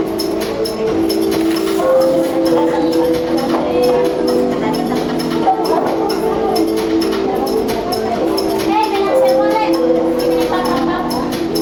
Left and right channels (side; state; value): both; identical; correlation 1.00